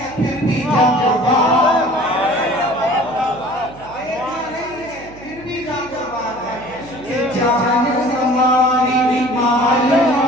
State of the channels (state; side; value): noise; right; hum, 20 dB below the sound